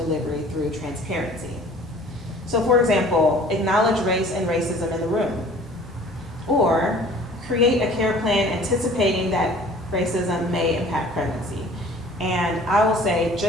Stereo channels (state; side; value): normal; both; correlation 0.49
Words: delivery through transparency. So for example, acknowledge race and racism in the room, or create a care plan anticipating that racism may impact pregnancy. And I will say,